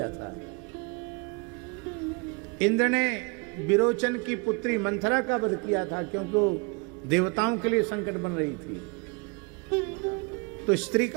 था। इंद्र ने विरोचन की पुत्री मंथरा का वध किया था, क्योंकि वो देवताओं के लिए संकट बन रही थी। तो स्त्री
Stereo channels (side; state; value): left; quieter; 29.6 dB